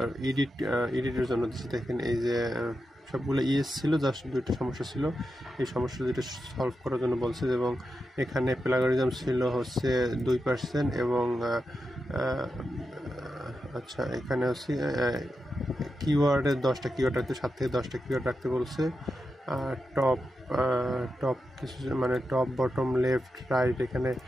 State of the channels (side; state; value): both; normal; correlation 0.88